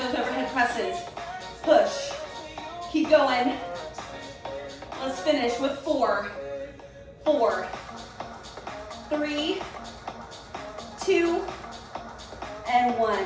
overhead presses. Push, keep going. Let's finish with 4, 4, 3, 2, and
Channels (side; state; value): both; identical; correlation 1.00